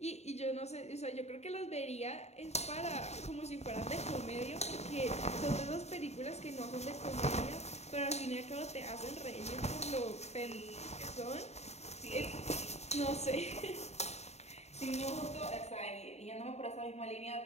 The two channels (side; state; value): right; late; 0.32 ms